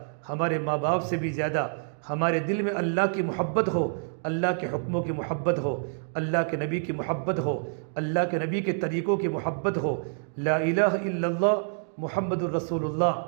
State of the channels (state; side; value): silent; left; digital silence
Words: ہمارے ماں باپ سے بھی زیادہ ہمارے دل میں اللہ کی محبت ہو، اللہ کے حکموں کی محبت ہو، اللہ کے نبی کی محبت ہو، اللہ کے نبی کے طریقوں کی محبت ہو۔ لا الہ الا اللہ محمد الرسول اللہ،